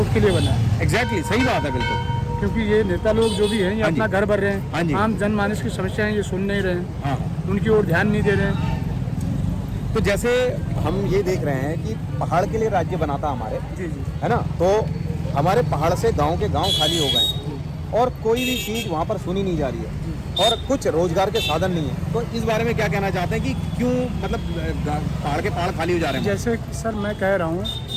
के लिए बना है। एग्जैक्टली सही बात है, बिल्कुल। क्योंकि ये नेता लोग जो भी हैं, ये हाँ जी। अपना घर भर रहे हाँ जी। हैं, आम जनमानस की समस्याएं ये सुन नहीं रहे हैं, हाँ उनकी ओर ध्यान नहीं दे रहे हैं। तो जैसे हम ये देख रहे हैं कि पहाड़ के लिए राज्य बना था हमारे, जी जी, है ना, तो हमारे पहाड़ से गांव के गांव खाली हो गए हैं और कोई भी चीज़ वहाँ पर सुनी नहीं जा रही है और कुछ रोजगार के साधन नहीं है। तो इस बारे में क्या कहना चाहते हैं कि क्यों मतलब पहाड़ के पहाड़ खाली हो जा रहे हैं? जैसे कि सर मैं कह रहा हूँ,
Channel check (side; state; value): both; identical; correlation 1.00